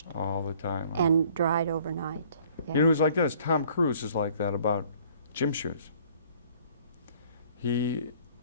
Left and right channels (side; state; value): both; inverted; correlation -0.56